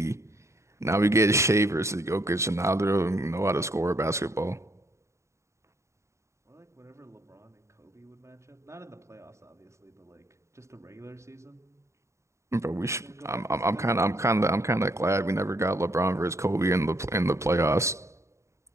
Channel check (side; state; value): left; late; 0.14 ms